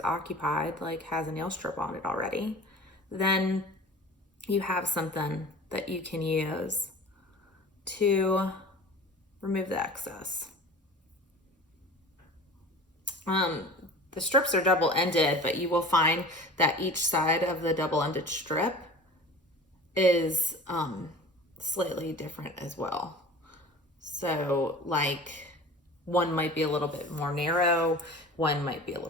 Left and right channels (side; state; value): both; normal; correlation 0.40